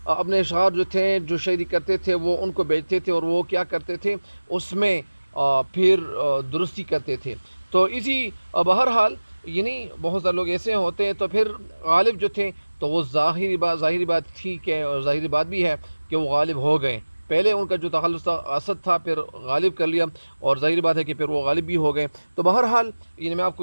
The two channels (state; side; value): inverted; both; correlation -1.00